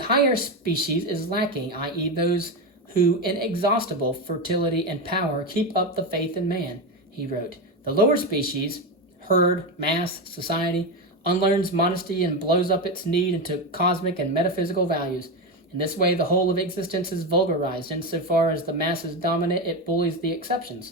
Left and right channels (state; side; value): normal; both; correlation 0.14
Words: species is lacking, i.e. those who, in inexhaustible fertility and power, keep up the faith in man, he wrote. The lower species, herd, mass, society, unlearns modesty and blows up its need into cosmic and metaphysical values. In this way, the whole of existence is vulgarized. Insofar as the masses dominate, it bullies the